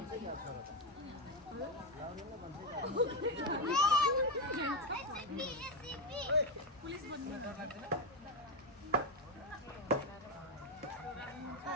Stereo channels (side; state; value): both; normal; correlation 0.10